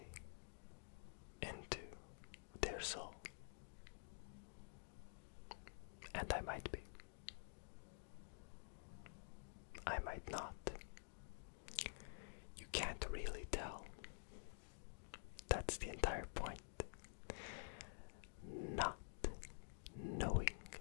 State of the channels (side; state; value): right; silent; digital silence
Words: into their soul. And I might be. I might not. You can't really tell. That's the entire point. Not knowing